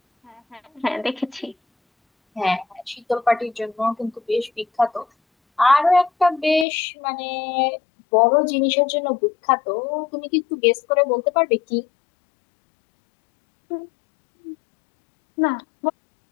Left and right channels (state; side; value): drops out; right; at 6.7 s